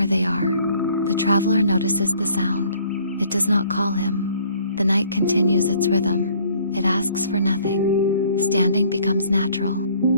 they are. The traveler notices the sound. It does not call him. The night continues its rhythm. It asks for nothing. Standing becomes natural.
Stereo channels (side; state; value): both; inverted; correlation -0.58